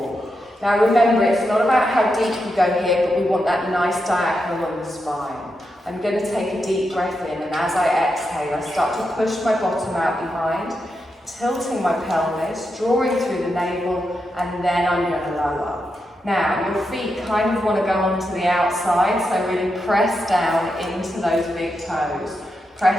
Now remember, it's not about how deep you go here, but we want that nice diagonal on the spine. I'm going to take a deep breath in, and as I exhale, I start to push my bottom out behind, tilting my pelvis, drawing through the navel, and then I'm going to lower. Now, your feet kind of want to go onto the outside, so really press down into those big toes.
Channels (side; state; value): both; normal; correlation 0.86